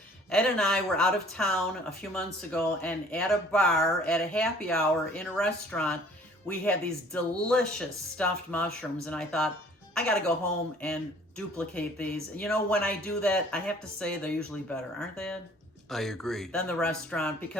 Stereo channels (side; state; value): both; normal; correlation 0.54